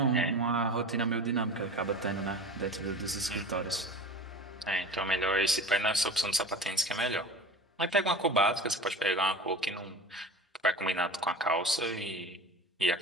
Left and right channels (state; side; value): normal; both; correlation 0.35